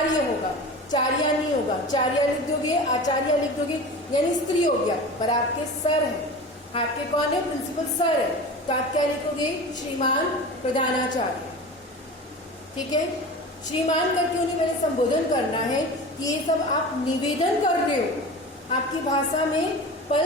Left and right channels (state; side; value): normal; both; correlation 0.33